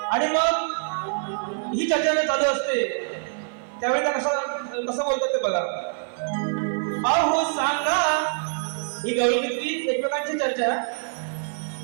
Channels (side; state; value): left; silent; digital silence